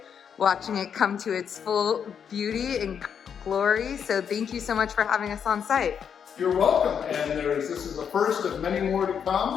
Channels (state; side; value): quieter; right; 7.6 dB